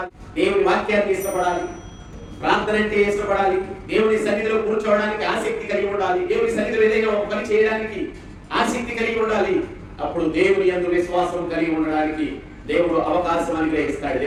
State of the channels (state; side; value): identical; both; correlation 1.00